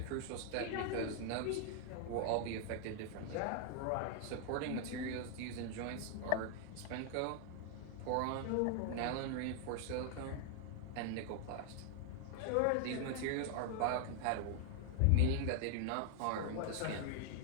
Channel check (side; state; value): both; different; correlation 0.00